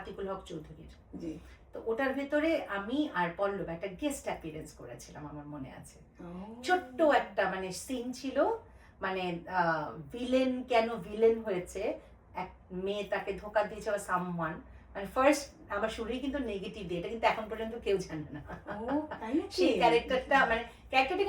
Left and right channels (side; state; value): both; identical; correlation 1.00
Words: হক চৌধুরীর। তো ওটার ভেতরে আমি আর পল্লব একটা গেস্ট অ্যাপিয়ারেন্স করেছিলাম, আমার মনে আছে। ছোট্ট একটা মানে সিন ছিল, মানে ভিলেন কেন ভিলেন হয়েছে, এক মেয়ে তাকে ধোকা দিয়েছে বা সামওয়ান, মানে ফার্স্ট আমার শুরুই কিন্তু নেগেটিভ দিয়ে, এটা কিন্তু এখন পর্যন্ত কেউ জানে না। সেই ক্যারেক্টারটা মানে ক্যারেক্টারটা